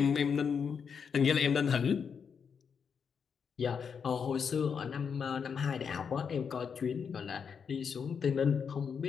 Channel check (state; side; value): quieter; right; 6.5 dB